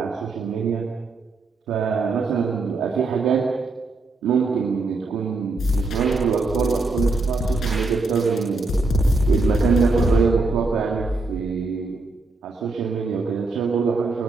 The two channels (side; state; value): left; quieter; 3.4 dB